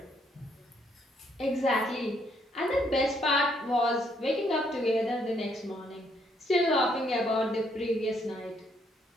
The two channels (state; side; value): normal; both; correlation 0.71